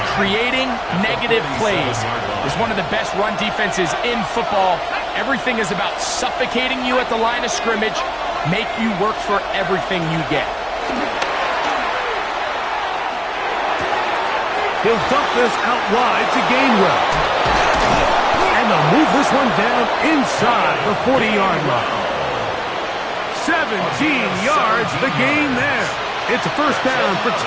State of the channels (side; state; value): both; identical; correlation 1.00